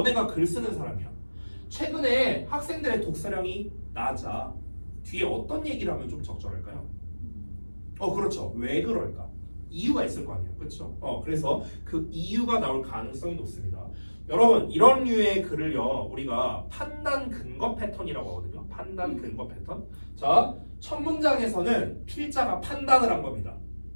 글 쓰는 사람이야. 최근에 학생들의 독서량이 낮아. 뒤에 어떤 얘기를 하면 좀 적절할까요? 그렇죠. 왜 그럴까? 이유가 있을 거 아니에요. 그렇죠? 그래서 그 이유가 나올 가능성이 높습니다. 여러분, 이런 류의 글을요, 우리가 판단 근거 패턴이라고 하거든요. 판단 근거 패턴. 자, 첫 문장에서는 필자가 판단을 한 겁니다.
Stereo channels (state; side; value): inverted; both; correlation -1.00